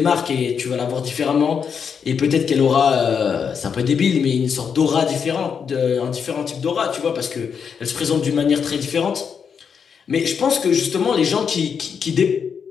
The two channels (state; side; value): quieter; right; 6.7 dB